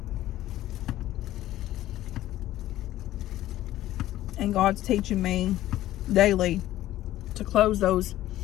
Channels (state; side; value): quieter; right; 14.3 dB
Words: And God's teaching me daily to close those